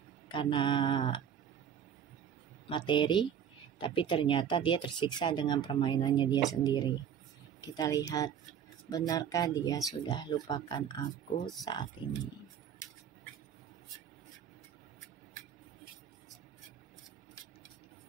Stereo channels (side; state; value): left; quieter; 8.6 dB